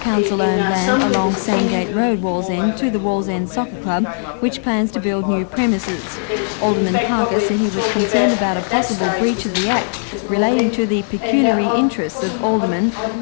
land along Sandgate Road, Wallsend, to the Wallsend Soccer Club, which plans to build new premises. Alderman Parker said he was concerned about a possible breach of the Act relating to the pecuniary interests of aldermen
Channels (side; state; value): right; silent; 67 dB below the other